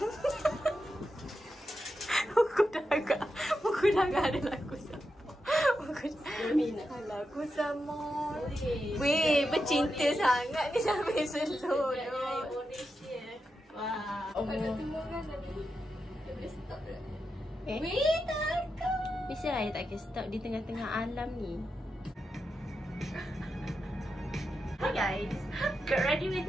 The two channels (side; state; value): both; normal; correlation 0.88